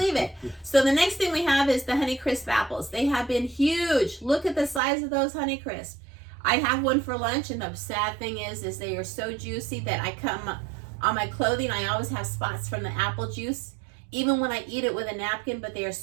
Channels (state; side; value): drops out; left; at 4.8 s